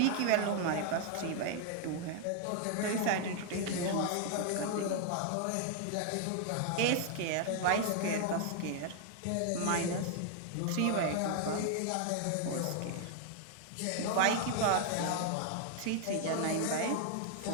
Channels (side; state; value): both; different; correlation 0.00